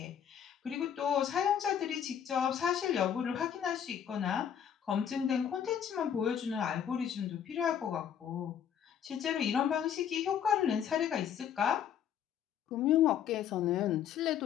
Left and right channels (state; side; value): quieter; right; 8.8 dB